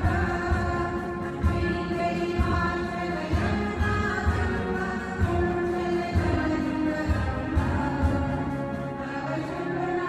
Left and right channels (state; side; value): identical; both; correlation 1.00